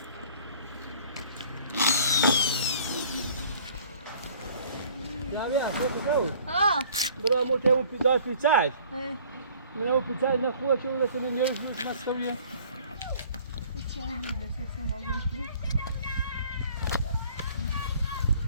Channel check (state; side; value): inverted; both; correlation -0.53